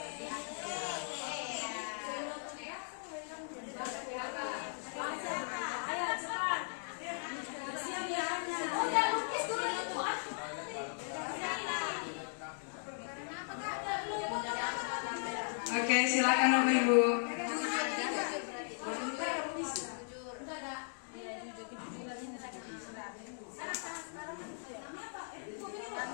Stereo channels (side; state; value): right; silent; digital silence